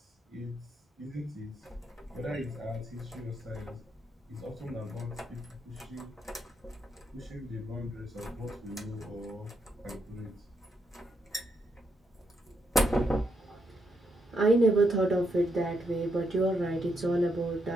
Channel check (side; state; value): both; normal; correlation 0.79